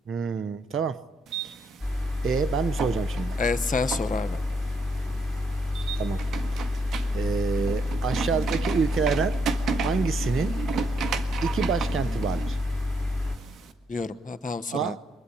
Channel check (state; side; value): normal; both; correlation 0.76